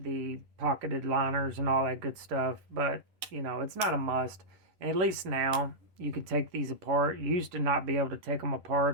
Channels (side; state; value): left; late; 10 ms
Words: pocketed liners and all that good stuff, but you know, it's not a must. And at least now you could take these apart. You used to not be able to take them